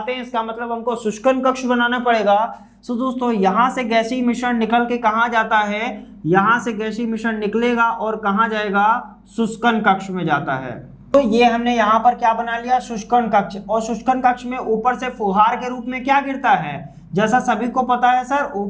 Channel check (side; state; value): both; identical; correlation 1.00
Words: हैं, इसका मतलब हमको शुष्कन कक्ष बनाना पड़ेगा। सो दोस्तों यहां से गैसीय मिश्रण निकल के कहां जाता है, यहां से गैसीय मिश्रण निकलेगा और कहां जाएगा, शुष्कन कक्ष में जाता है। तो ये हमने यहाँ पर क्या बना लिया, शुष्कन कक्ष। और शुष्कन कक्ष में ऊपर से फुहार के रूप में क्या गिरता है, जैसा सभी को पता है सर,